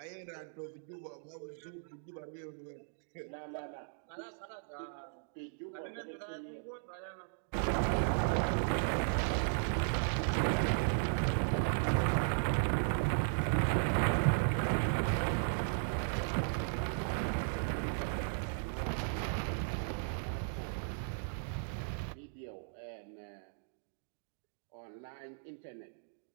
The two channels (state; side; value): silent; left; digital silence